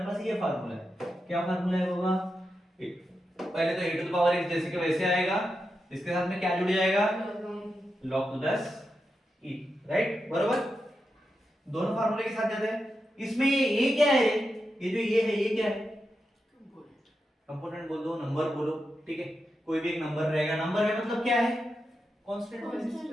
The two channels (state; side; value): normal; both; correlation 0.88